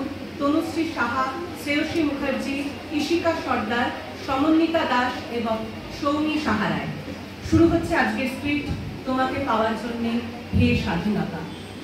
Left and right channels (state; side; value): identical; both; correlation 1.00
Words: তনুশ্রী সাহা, শ্রেয়সী মুখার্জি, ঈশিকা সর্দার, সমন্বিতা দাস এবং সৌমি সাহা রায়। শুরু হচ্ছে আজকের স্ক্রিপ্ট তোমাকে পাওয়ার জন্যে হে স্বাধীনতা।